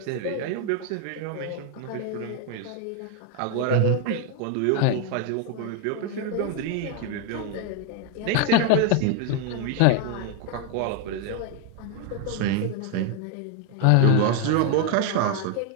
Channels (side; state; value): both; different; correlation 0.01